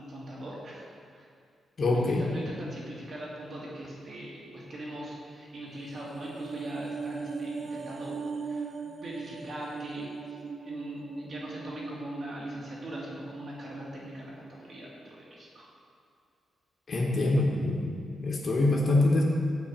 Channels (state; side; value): normal; both; correlation 0.84